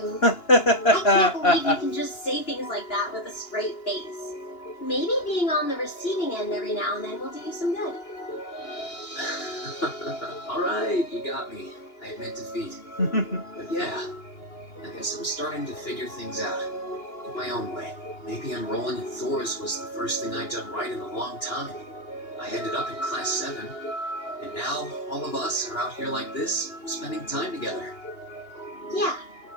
I can't believe you can just say things like that with a straight face. Maybe being on the receiving end every now and then will do you some good. Alright, you got me. I admit defeat. But yeah, I guess I'm starting to figure things out. In my own way. Maybe enrolling in Thor's was the first thing I'd done right in a long time. I ended up in Class 7. And now, all of us are out here like this, spending time together. Yeah,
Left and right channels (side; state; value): right; late; 2.9 ms